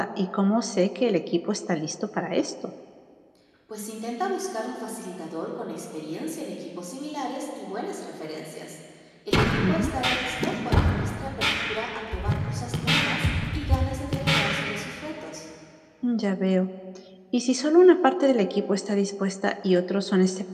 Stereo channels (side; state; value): both; identical; correlation 1.00